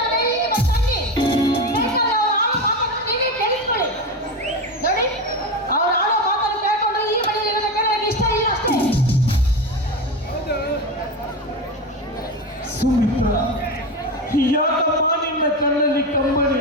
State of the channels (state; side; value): normal; both; correlation 0.20